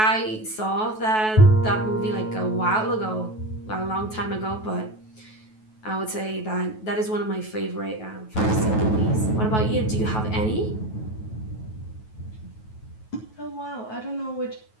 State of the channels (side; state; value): right; late; 9.3 ms